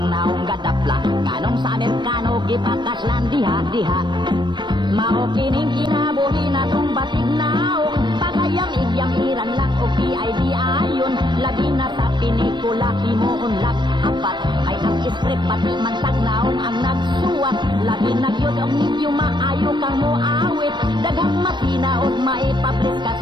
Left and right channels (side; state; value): left; late; 0.22 ms